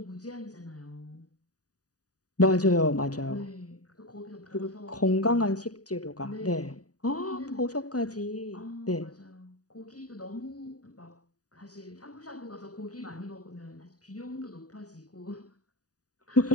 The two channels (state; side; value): late; right; 0.68 ms